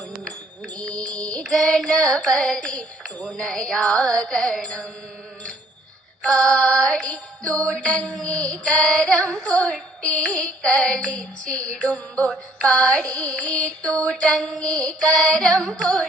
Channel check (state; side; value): normal; both; correlation 0.62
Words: ഗണപതി തുണയാകണം പാടി തുടങ്ങി കരം കൊട്ടി കളിച്ചിടുമ്പോൾ പാടി തുടങ്ങി കരം